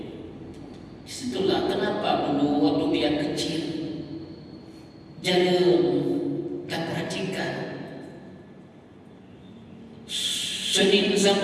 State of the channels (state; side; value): identical; both; correlation 1.00